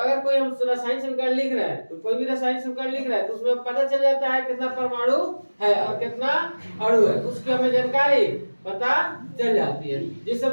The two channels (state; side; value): inverted; both; correlation -1.00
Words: कोई हम रासायनिक समीकरण लिख रहे हैं, तो कोई भी रासायनिक समीकरण लिख रहे हैं तो उसमें पता चल जाता है कितना परमाणु है और कितना अणु है, उसकी हमें जानकारी पता चल जाती है। जैसे